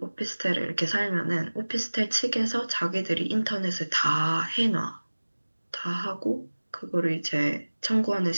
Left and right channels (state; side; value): inverted; both; correlation -1.00